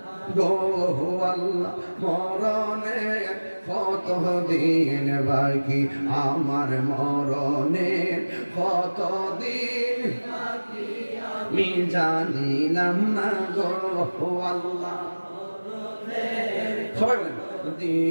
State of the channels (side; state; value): both; inverted; correlation -1.00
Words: গো আল্লাহ, মরণে কতদিন বাকি আমার মরণে, কতদিন আমি জানিলাম না গো আল্লাহ। সবাই বলেন